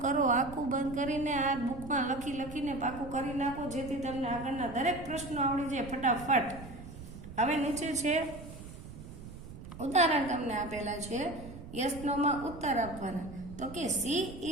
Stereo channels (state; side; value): noise; right; rumble, 13 dB below the sound